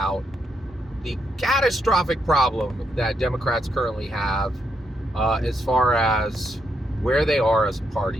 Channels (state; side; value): normal; both; correlation 0.79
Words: the catastrophic problem that Democrats currently have as far as where they are as a